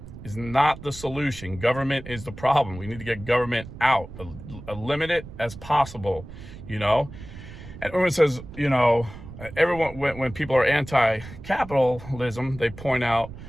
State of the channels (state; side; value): noise; right; rumble, 14 dB below the sound